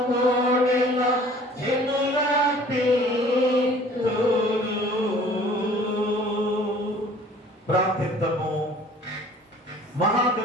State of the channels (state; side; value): normal; both; correlation 0.51